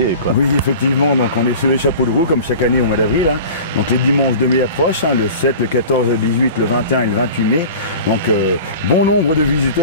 quoi. Oui, effectivement. Donc, on est sur les chapeaux de roue, comme chaque année au mois d'avril. Hein. Donc, les dimanches de mai approchent, hein, le 7, le 14, le 18, le 21 et le 28 mai. Donc, bon nombre de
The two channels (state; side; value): inverted; both; correlation -0.38